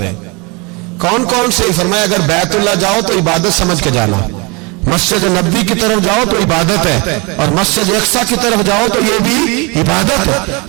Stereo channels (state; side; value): quieter; left; 28.9 dB